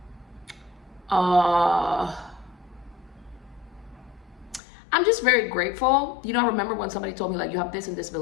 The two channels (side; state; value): right; drops out; at 4.6 s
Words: I'm just very grateful. You know, I remember when somebody told me, like, you have this and this